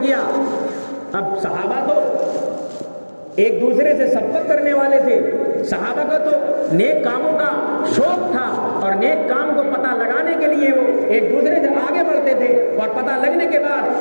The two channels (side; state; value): both; inverted; correlation -1.00